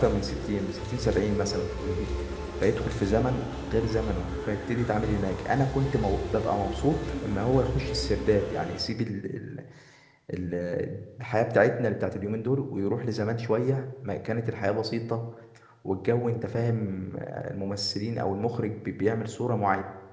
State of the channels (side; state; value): both; identical; correlation 1.00